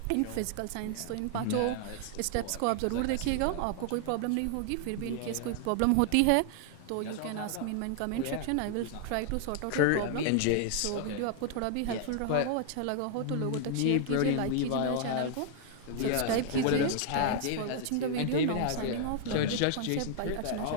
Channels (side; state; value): both; different; correlation 0.00